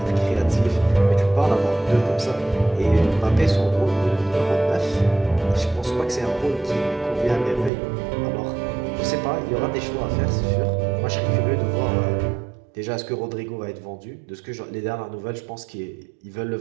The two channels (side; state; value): left; drops out; at 7.7 s